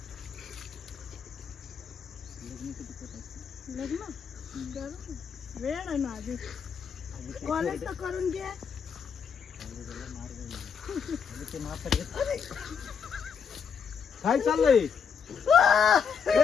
लग्न वेळ आहे ना आधी, कॉलेज तर करून घे. काय चाललंय?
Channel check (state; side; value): quieter; right; 6.7 dB